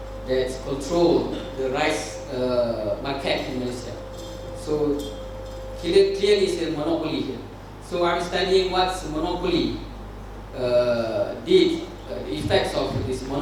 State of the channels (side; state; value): both; identical; correlation 1.00